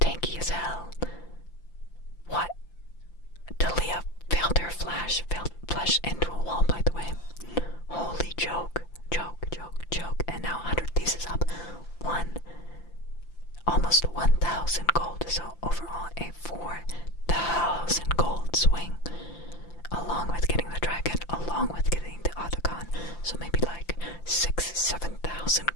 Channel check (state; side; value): late; right; 5.8 ms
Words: tanky as hell. What? Talia failed her flash into a wall, by the way. Holy joke. And now 100 Thieves is up almost 1,000 gold. So overall a 4,000 gold swing. Along with getting the dragon, along with getting the autocon. So maybe like 6,000-7,000